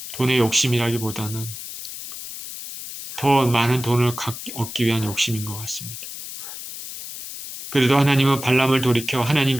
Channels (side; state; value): left; noise; hiss, 10 dB below the sound